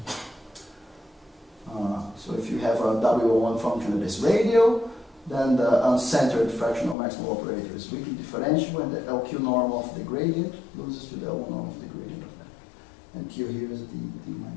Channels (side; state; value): right; drops out; at 7.0 s